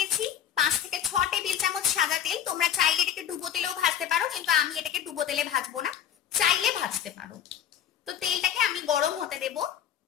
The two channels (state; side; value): quieter; right; 9.7 dB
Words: 5 থেকে 6 টেবিল চামচ সাদা তেল। তোমরা চাইলে এটাকে ডুবো তেলেও ভাজতে পারো, কিন্তু আমি এটাকে ডুবো তেলে ভাজবো না, চাইলে ভাজতে পারো। তো তেলটাকে আমি গরম হতে দেব।